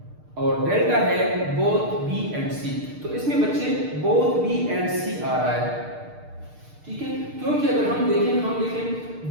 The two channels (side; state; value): left; late; 6.6 ms